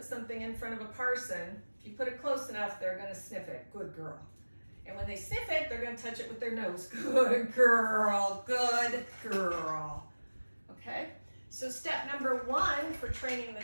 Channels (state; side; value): inverted; both; correlation -1.00